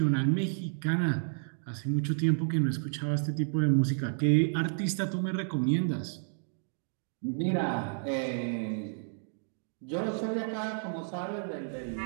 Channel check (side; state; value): left; silent; digital silence